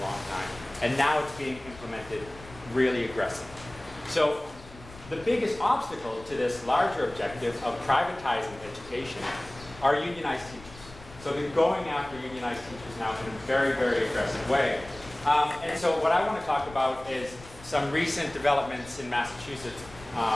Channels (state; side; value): noise; left; rumble, 19 dB below the sound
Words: long time, and now it's being implemented really aggressively. So the biggest obstacle to this larger objective of privatizing education are unionized teachers. So they're going after unionized teachers now in a very, very aggressive way. And so what I want to talk about is some recent developments in Massachusetts